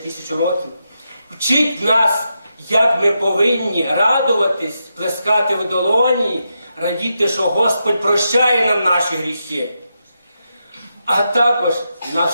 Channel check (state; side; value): inverted; both; correlation -0.85